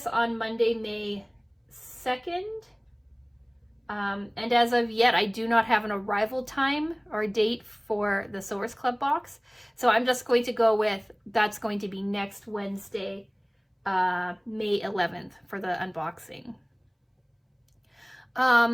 on Monday, May 2nd. And as of yet, I do not have an arrival time or date for the Sewers Club box. So I'm just going to go with, that's going to be next Wednesday, May 11th for the unboxing.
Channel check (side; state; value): both; identical; correlation 1.00